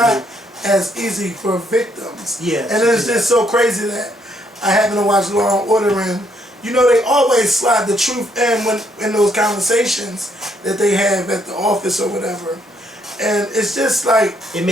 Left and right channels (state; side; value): normal; both; correlation 0.71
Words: as easy for victims. Yeah. And it's just so crazy that I happen to watch Law and Order, and they always slide the truth in those conversations that they have at the office or whatever. And it's just like it